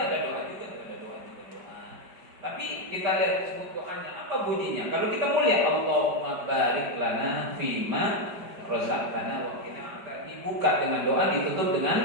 ada doa juga, ada doa. Tapi kita lihat sebut doanya apa bunyinya. Kalau kita mulia, Allahumma barik lana fima razaqtana wa qina adzabannar. Dibuka dengan doa, ditutup dengan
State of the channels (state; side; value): late; left; 5.0 ms